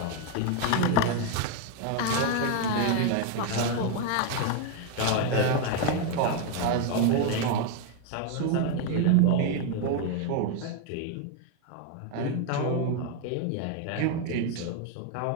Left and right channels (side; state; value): both; different; correlation 0.01